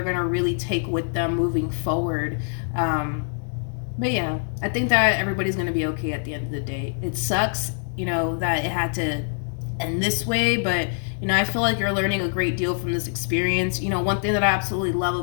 going to really take with them moving forward. But yeah, I think that everybody's going to be okay at the end of the day. It sucks, you know, that it had to end this way, but you know, I feel like you're learning a great deal from this experience. You know, one thing that I absolutely love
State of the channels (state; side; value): silent; right; 62 dB below the other